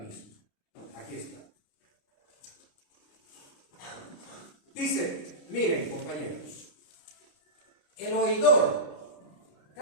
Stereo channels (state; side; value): late; right; 30 ms